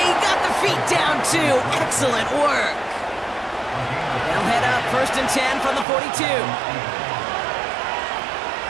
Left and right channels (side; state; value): left; drops out; at 5.9 s